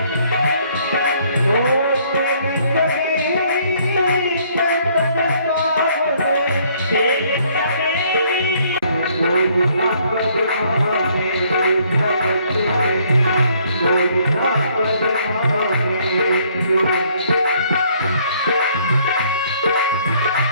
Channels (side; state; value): both; inverted; correlation -0.64